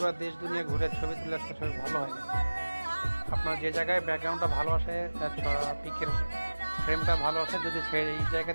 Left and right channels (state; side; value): inverted; both; correlation -1.00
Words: দেশ দুনিয়া ঘুরে ছবি তুলে আসলে ছবি ভালো হয় না। আপনার যে জায়গায় ব্যাকগ্রাউন্ডটা ভালো আসে, পিকের ফ্রেমটা ভালো আসে, যদি এই